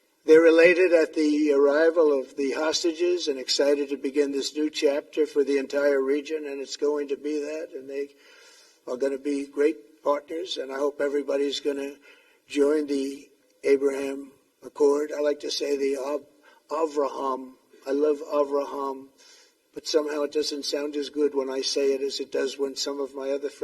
They're elated at the arrival of the hostages and excited to begin this new chapter for the entire region, and it's going to be that, and they are going to be great partners, and I hope everybody's going to join the Abraham Accord. I like to say the Avraham. I love Avraham. But somehow it doesn't sound as good when I say it as it does when some of my other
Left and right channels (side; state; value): both; identical; correlation 1.00